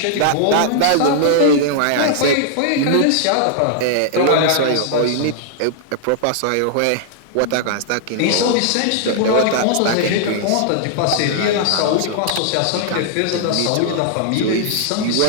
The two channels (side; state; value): both; different; correlation -0.01